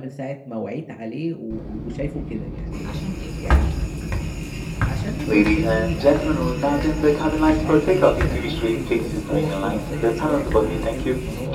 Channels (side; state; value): both; identical; correlation 1.00